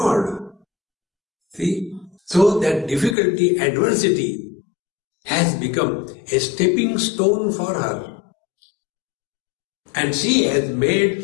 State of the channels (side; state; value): right; drops out; at 3.2 s